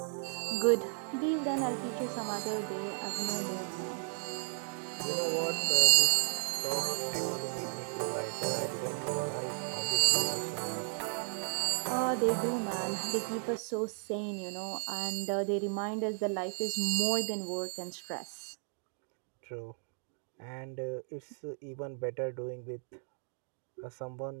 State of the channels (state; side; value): silent; left; 55 dB below the other